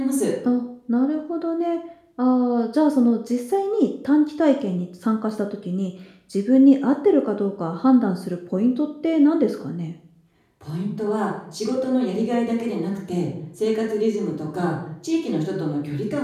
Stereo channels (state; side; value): identical; both; correlation 1.00